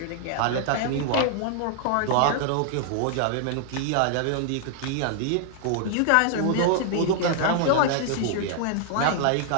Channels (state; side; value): different; both; correlation -0.01